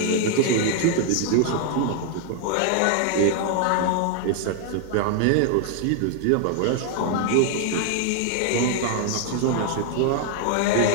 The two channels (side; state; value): both; different; correlation 0.00